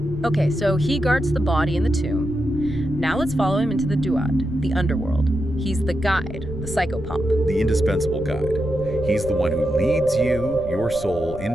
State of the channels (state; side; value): noise; left; rumble, 11 dB below the sound